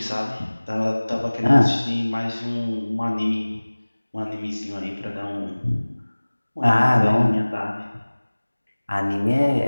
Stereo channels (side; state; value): both; inverted; correlation -1.00